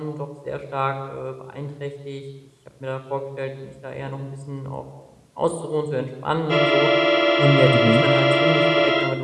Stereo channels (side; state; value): both; identical; correlation 1.00